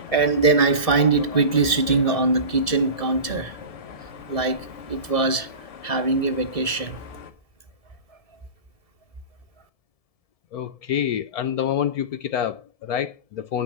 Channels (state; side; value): late; right; 1.7 ms